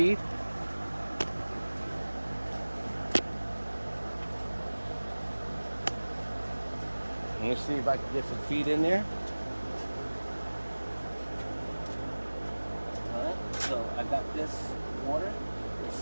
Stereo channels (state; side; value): inverted; both; correlation -1.00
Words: Let me see if I can get some feed in there. Alright, so I got this water. Let's